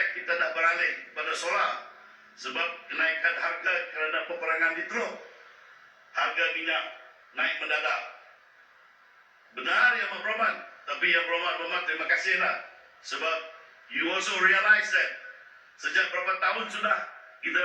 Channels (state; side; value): identical; both; correlation 1.00